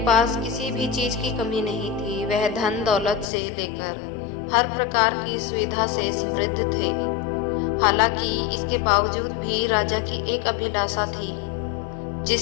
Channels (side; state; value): right; drops out; at 3.2 s